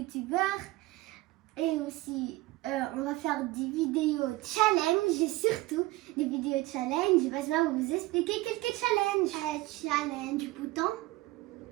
Et aussi, on va faire des vidéos challenge, et surtout des vidéos challenge. Basma va vous expliquer quelques challenges. Challenge bouton.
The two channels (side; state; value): left; quieter; 19.4 dB